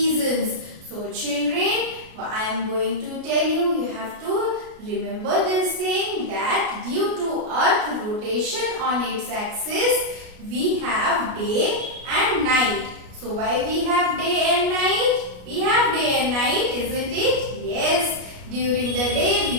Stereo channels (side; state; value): left; late; 33 ms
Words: So children, I am going to tell you, you have to remember this thing, that due to Earth rotation on its axis, we have day and night. So why we have day and night? We have day and night, isn't it? Yes. During the day